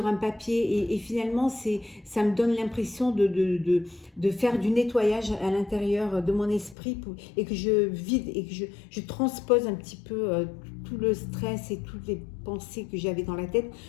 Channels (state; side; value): drops out; right; at 6.8 s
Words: un papier et finalement ça me donne l'impression de faire du nettoyage à l'intérieur de mon esprit et que je vide et que je transpose un petit peu tout le stress et toutes les pensées que j'avais dans la tête